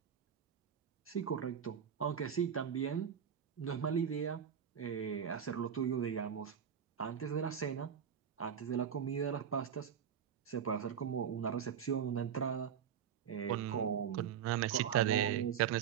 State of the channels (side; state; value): left; quieter; 8.2 dB